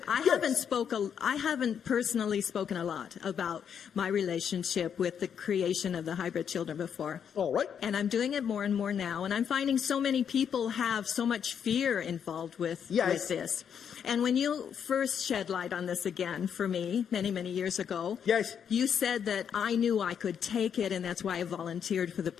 haven't personally spoken a lot about my relationship with the creation of the hybrid children before. All right. And I'm doing it more and more now. And I'm finding so many people have so much fear involved with Yes. this. And when you first shed light on this again for me many, many years ago, Yes. you said that I knew I could take it, and that's why I volunteered for the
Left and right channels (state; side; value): quieter; right; 7.9 dB